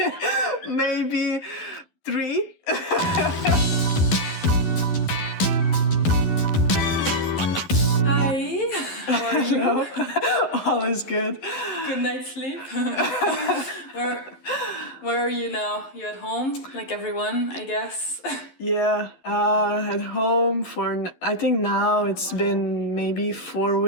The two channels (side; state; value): right; late; 11 ms